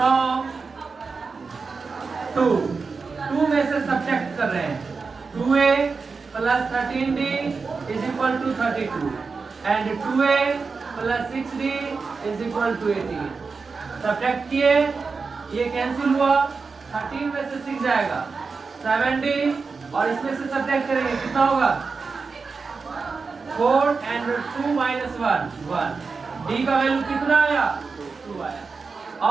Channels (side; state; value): left; quieter; 4.7 dB